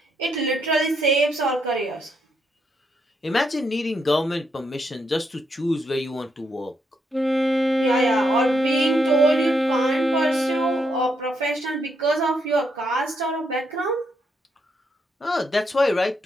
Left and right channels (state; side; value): normal; both; correlation 0.78